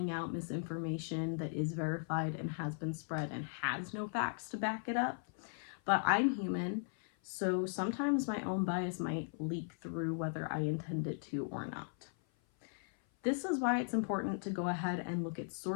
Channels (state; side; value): silent; right; 53 dB below the other